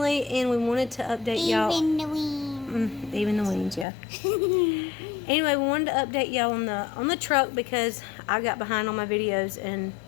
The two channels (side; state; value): right; drops out; at 3.9 s